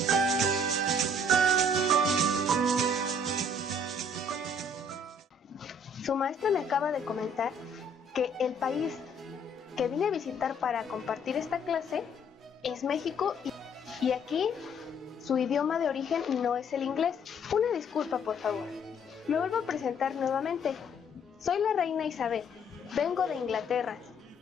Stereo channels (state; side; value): normal; both; correlation 0.62